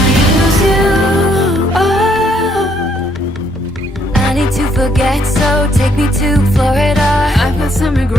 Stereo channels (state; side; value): normal; both; correlation 0.69